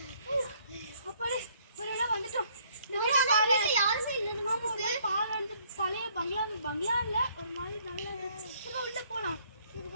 அப்படி ஒருவேளை வந்துட்டோம். யாருமே இல்லை நமக்கு. பாலந்து பழைய பங்களா இல்ல ஒரு மாதிரி நல்லா இருந்துச்சு. உள்ள போலாம்.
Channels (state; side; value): inverted; both; correlation -0.65